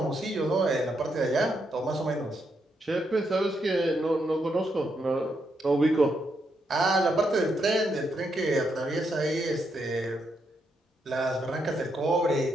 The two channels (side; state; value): both; normal; correlation 0.80